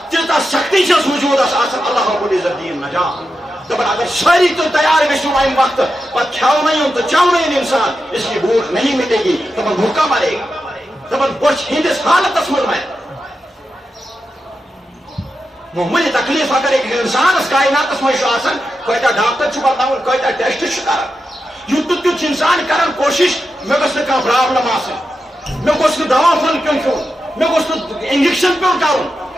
تیٖژاہ سختی چھس وجوٗدس آسان اللہ رب العزت دِیِن نجات دپان اگر ساری تو تیار گژھو امہ وقت پتہ کھیونی تو چونی انسان اس کی بھوک نہیں مٹے گی دپان بھوکا مرے گا دپان بچ ہندس حالتس من مرے معمولی تکلیف اگر ایک انسانس کائناتس مجھ کتا ڈاکٹر بتاؤن کتا ٹیسٹ کر یوت تیت انسان کران کوشش مے گھس نا پرابلم آسن مے گوس نا دوا پھل پیون کھیون مے گوس نا انجیکشن پیون کرن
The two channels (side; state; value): both; normal; correlation 0.89